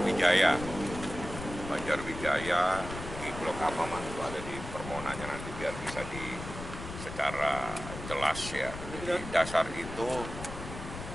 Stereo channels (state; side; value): noise; left; rumble, 9 dB below the sound